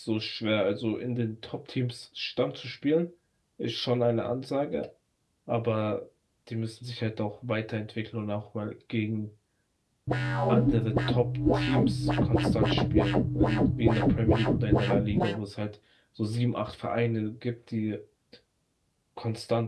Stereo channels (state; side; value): identical; both; correlation 1.00